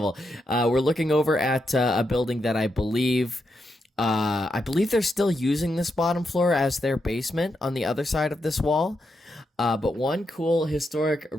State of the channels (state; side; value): normal; both; correlation 0.84